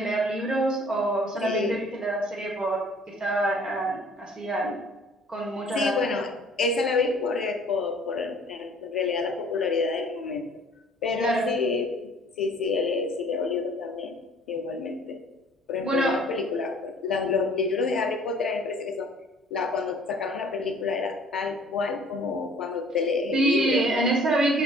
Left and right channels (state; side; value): normal; both; correlation 0.54